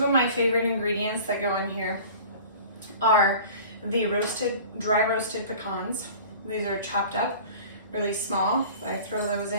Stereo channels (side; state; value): both; inverted; correlation -0.43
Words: of my favorite ingredients that go in here are the dry roasted pecans. These are chopped up really small. I throw those